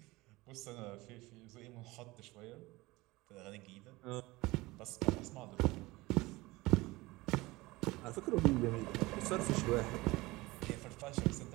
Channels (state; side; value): quieter; left; 21.0 dB